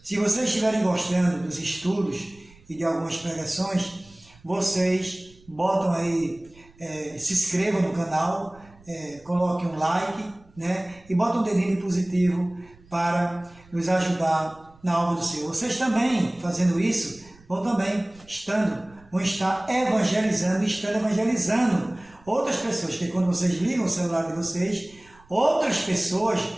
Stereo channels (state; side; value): noise; right; rumble, 27 dB below the sound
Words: se vocês estiverem gostando dos estudos e de algumas pregações, vocês botam aí, se inscrevam no canal, coloquem um like, e botam um dedinho positivo para nos ajudar na obra do Senhor. Vocês também, fazendo isso, vão também estando vão estar evangelizando, estando evangelizando outras pessoas, que quando vocês ligam o celular de vocês, outras pessoas,